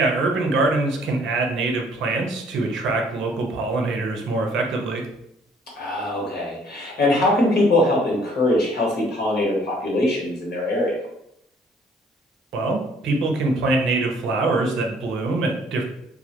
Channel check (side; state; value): both; normal; correlation 0.60